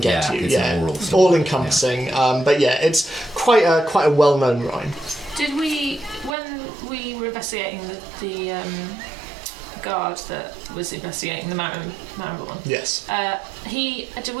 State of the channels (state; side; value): drops out; left; at 6.4 s